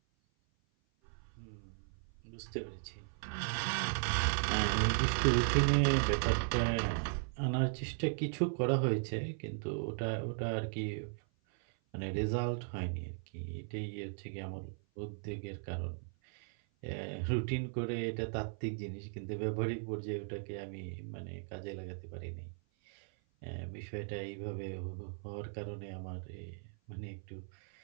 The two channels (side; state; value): left; silent; 53 dB below the other